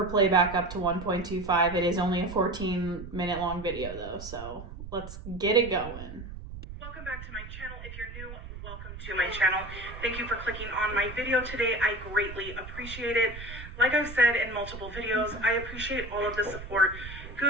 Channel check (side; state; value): right; noise; rumble, 12 dB below the sound